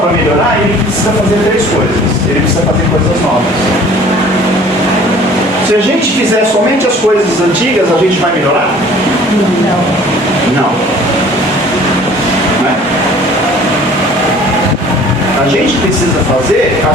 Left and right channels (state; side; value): normal; both; correlation 0.51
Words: melhorar, ele precisa fazer 3 coisas. Ele precisa fazer coisas novas. Se a gente fizer somente as coisas antigas, a gente vai melhorar? Não. Não é? A gente precisa fazer